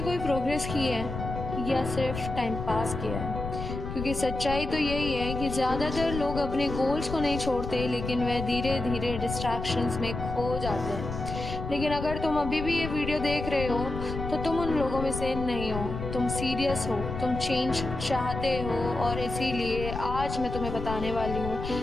कोई प्रोग्रेस की है या सिर्फ टाइम पास किया है? क्योंकि सच्चाई तो यही है कि ज़्यादातर लोग अपने गोल्स को नहीं छोड़ते, लेकिन वह धीरे धीरे डिस्ट्रैक्शंस में खो जाते हैं। लेकिन अगर तुम अभी भी ये वीडियो देख रहे हो तो तुम उन लोगों में से नहीं हो, तुम सीरियस हो, तुम चेंज चाहते हो। और इसीलिए आज मैं तुम्हें बताने वाली हूँ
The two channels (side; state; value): left; noise; rumble, 6 dB below the sound